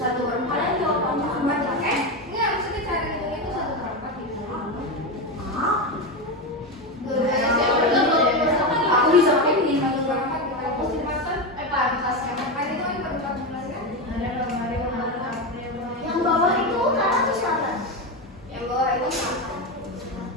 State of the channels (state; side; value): normal; both; correlation 0.15